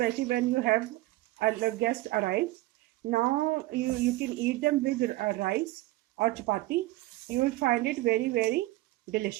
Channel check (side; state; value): left; quieter; 18.1 dB